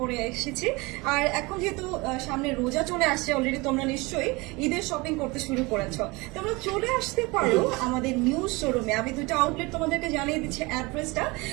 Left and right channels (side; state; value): left; quieter; 24.7 dB